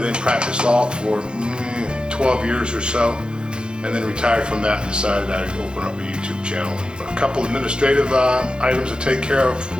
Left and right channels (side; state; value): left; late; 0.050 ms